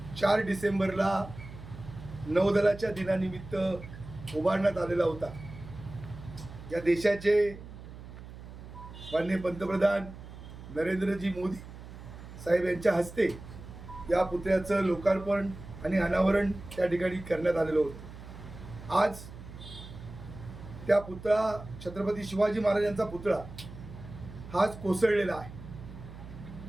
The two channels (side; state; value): right; noise; hum, 14 dB below the sound